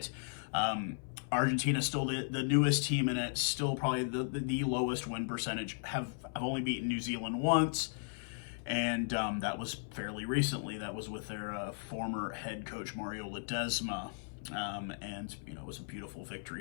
Argentina still the newest team in it, still probably the lowest win percentage. Have only beaten New Zealand once. And that was fairly recently. That was with their former head coach, Mario Ledesma. And, it was a beautiful victory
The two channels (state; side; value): silent; right; 54 dB below the other